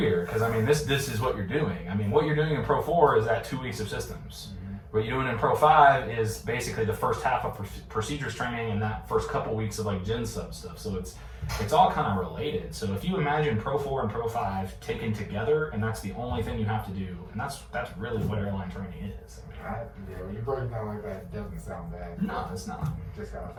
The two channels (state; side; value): identical; both; correlation 1.00